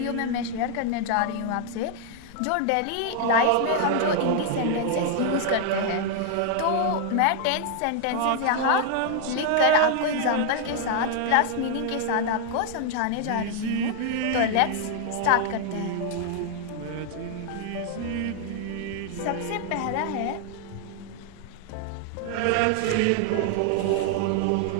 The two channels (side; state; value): both; different; correlation 0.00